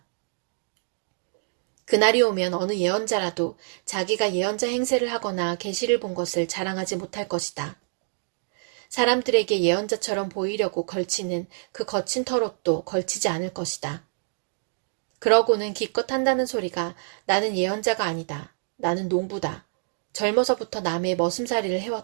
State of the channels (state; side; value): silent; left; digital silence